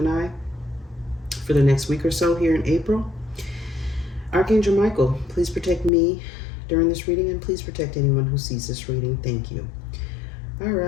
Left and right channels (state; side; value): drops out; right; at 5.9 s